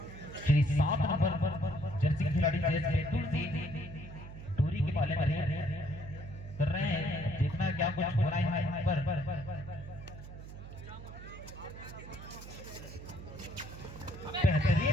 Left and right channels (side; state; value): right; noise; hum, 12 dB below the sound